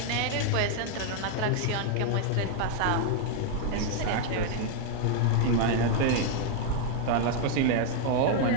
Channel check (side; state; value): both; different; correlation 0.00